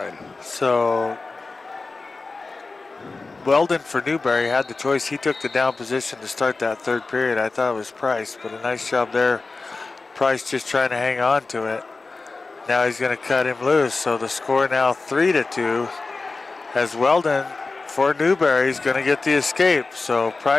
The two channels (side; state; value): right; quieter; 3.8 dB